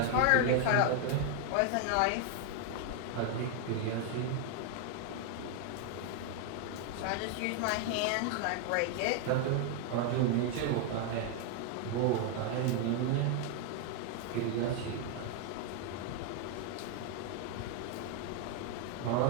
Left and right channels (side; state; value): both; different; correlation 0.00